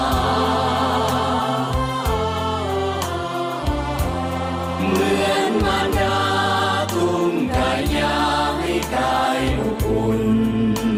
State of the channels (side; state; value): both; identical; correlation 1.00